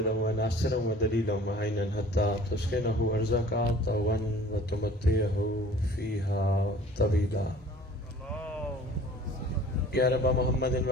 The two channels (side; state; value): both; normal; correlation 0.49